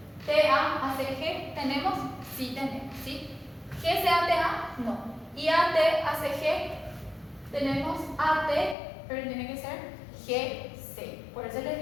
TA a CG, ¿tenemos? Sí, tenemos, ¿sí? GC a TA, no. Y AT a CG, tenemos AT, pero tiene que ser GC. Por eso les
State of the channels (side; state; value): right; drops out; at 8.8 s